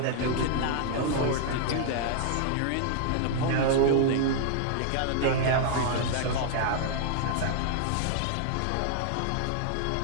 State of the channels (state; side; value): different; both; correlation 0.00